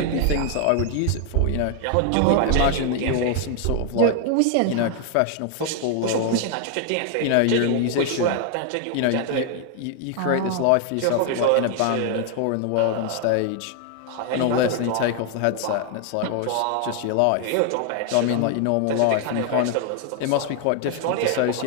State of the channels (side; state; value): both; different; correlation 0.00